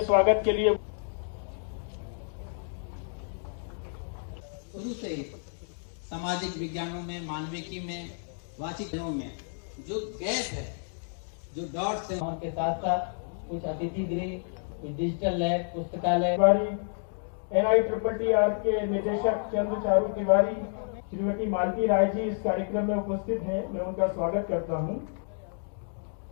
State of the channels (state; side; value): silent; right; digital silence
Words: स्वागत के लिए शुरू से सामाजिक विज्ञानों में, मानविकी में, वाचिकों में जो गैप है, जो डॉट्स हैं, उनके साथ साथ कुछ अतिथि गृह, कुछ डिजिटल लैब, पुस्तकालय। NITTR के निदेशक चंद्र चारू तिवारी, श्रीमती मालती राय जी इस कार्यक्रम में उपस्थित हैं। मैं उनका स्वागत करता हूं।